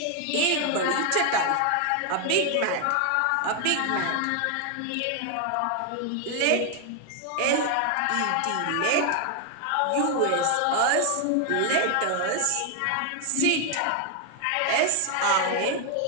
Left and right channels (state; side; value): different; both; correlation 0.00